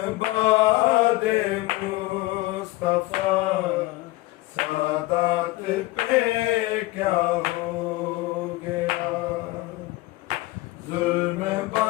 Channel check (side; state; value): right; quieter; 19.7 dB